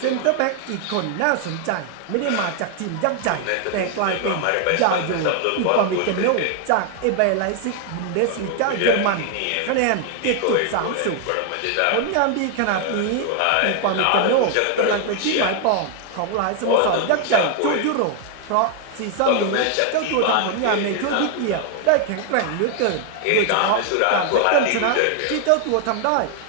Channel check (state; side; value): different; both; correlation 0.00